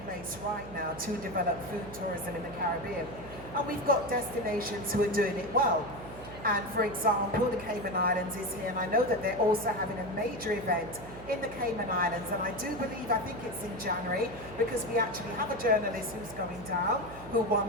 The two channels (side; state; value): right; noise; hum, 15 dB below the sound